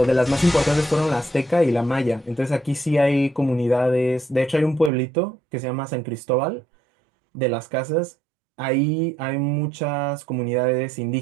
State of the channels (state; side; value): drops out; left; at 4.9 s